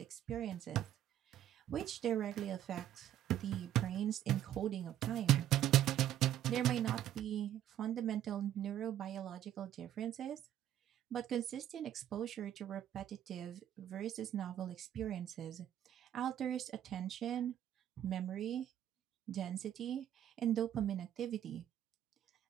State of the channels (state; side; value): quieter; left; 11.4 dB